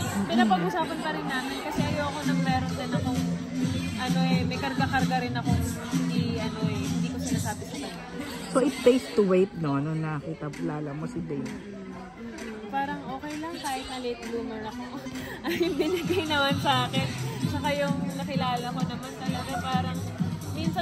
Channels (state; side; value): identical; both; correlation 1.00